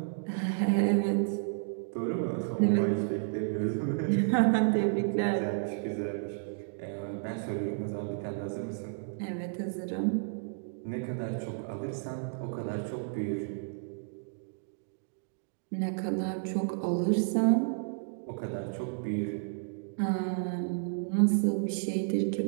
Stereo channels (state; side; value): silent; left; digital silence